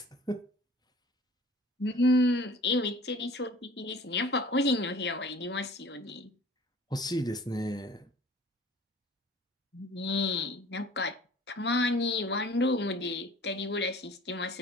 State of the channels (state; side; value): normal; both; correlation 0.47